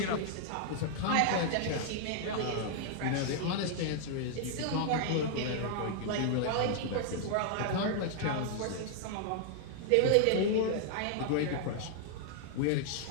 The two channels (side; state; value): both; different; correlation -0.01